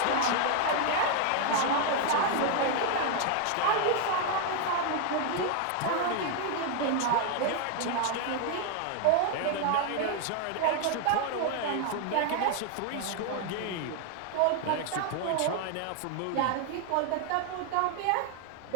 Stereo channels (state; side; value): different; both; correlation 0.00